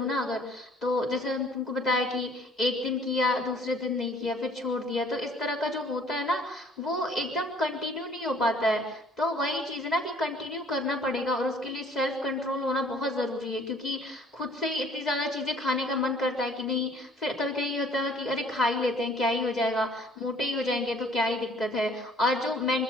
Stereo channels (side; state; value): both; normal; correlation 0.56